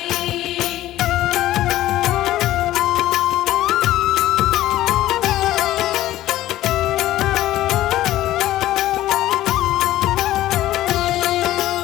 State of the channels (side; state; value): right; quieter; 14.7 dB